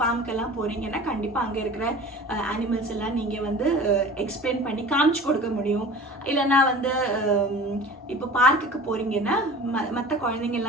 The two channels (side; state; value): both; normal; correlation 0.40